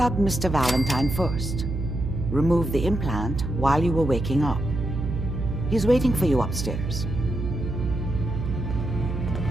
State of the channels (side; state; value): right; noise; hum, 4 dB below the sound